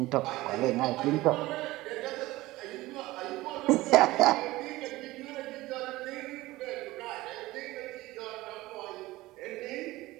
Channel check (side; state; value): left; quieter; 18.6 dB